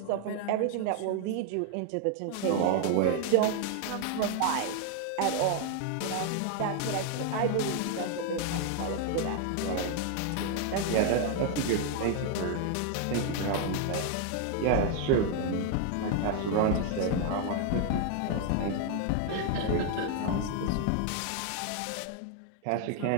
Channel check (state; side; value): different; both; correlation 0.00